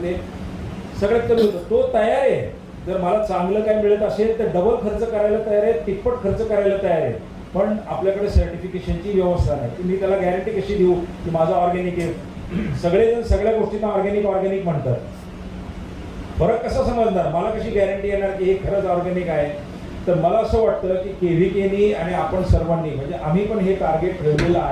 ते सगळ्यात कमी होतं. तो तयार आहे, जर मला चांगलं काय मिळत असेल तर डबल खर्च करायला तयार आहे, तिप्पट खर्च करायला तयार आहे. पण आपल्याकडे सर्टिफिकेशनची व्यवस्था नाही. मी त्याला गॅरंटी कशी देऊ की माझं ऑर्गॅनिक आहे? सगळेजण सगळ्या गोष्टींना ऑर्गॅनिक म्हणतात. फरक कसा समजणार? मला कशी गॅरंटी येणार की हे खरंच ऑर्गॅनिक आहे? तर मला असं वाटतं की KVKनी आणि आपण सर्वांनी, म्हणजे आम्ही पण हे टार्गेट ठेवलेलं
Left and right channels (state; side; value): identical; both; correlation 1.00